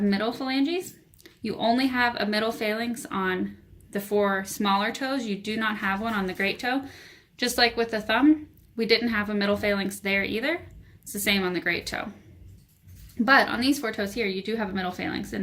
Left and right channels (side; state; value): both; identical; correlation 1.00